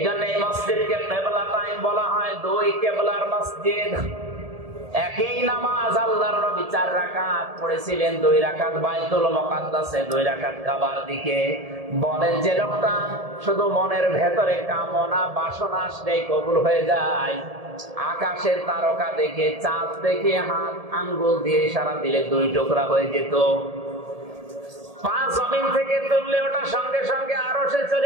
জন্য এই মসজিদকে কিবলা টাইম বলা হয়, 2 কিবলার মসজিদ। একই নামাজ আল্লাহর নবী 4 রাকাত পড়েছিলেন, 2 রাকাত বাইতুল মুকাদ্দাসে, 2 রাকাত কাবার দিকে। বলেন যে লোকটা শুধু মনের ভেতরে কামনা বাসনা আসলেই কবুল হয়ে যায়, আকাশের তারকা দেখে, চাঁদ দেখে হাত আঙ্গুল দিয়ে ইশারা দিলে 2 টুকরা হয়ে যেত। 5 জমিন থেকে তুললে ওটা সঙ্গে সঙ্গে আরশে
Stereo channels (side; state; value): left; late; 1.7 ms